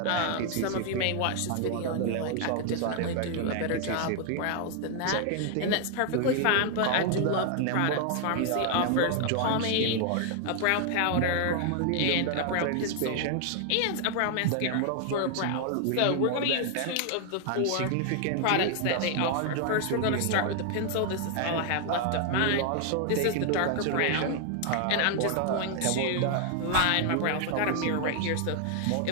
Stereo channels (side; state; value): both; different; correlation 0.00